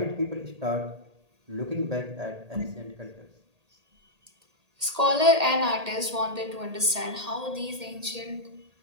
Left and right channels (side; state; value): left; late; 1.8 ms